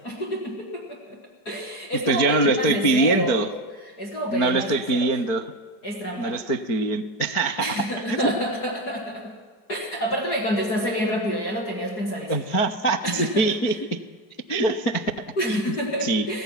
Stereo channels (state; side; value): late; right; 4.5 ms